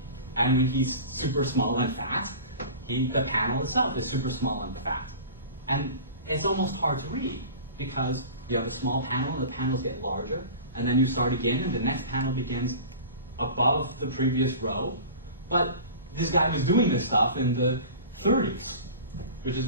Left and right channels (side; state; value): both; inverted; correlation -0.37